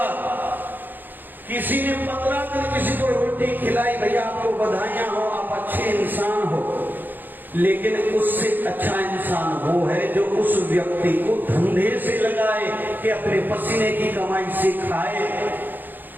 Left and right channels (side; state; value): left; late; 0.089 ms